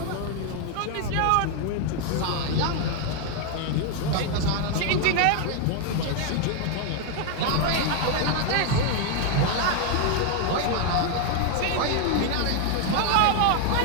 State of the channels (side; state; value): both; different; correlation 0.01